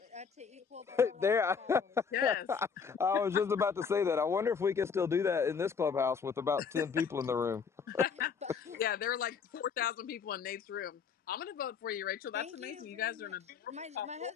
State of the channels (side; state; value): right; quieter; 6.1 dB